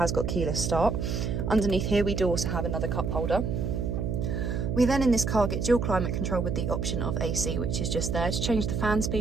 got keyless start. Underneath here we do also have another cup holder. We then in this car get dual climate control with the option of AC, which is just there. To change the fan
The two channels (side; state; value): right; noise; hum, 1 dB below the sound